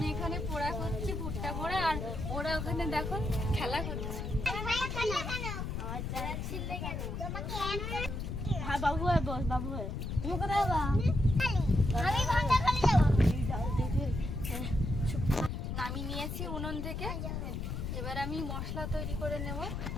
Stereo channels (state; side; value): noise; left; rumble, 4 dB below the sound